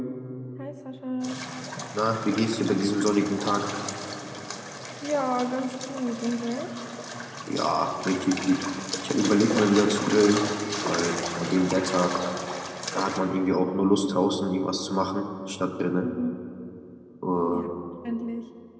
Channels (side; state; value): both; identical; correlation 1.00